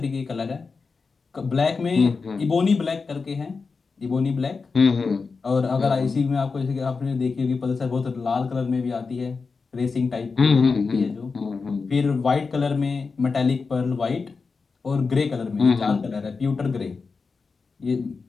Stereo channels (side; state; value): right; quieter; 4.7 dB